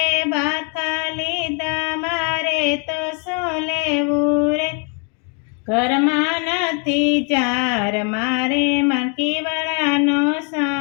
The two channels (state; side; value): quieter; right; 37.8 dB